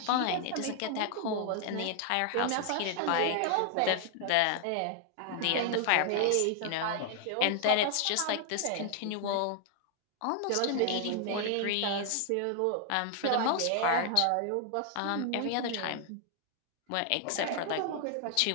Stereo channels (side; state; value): both; different; correlation 0.00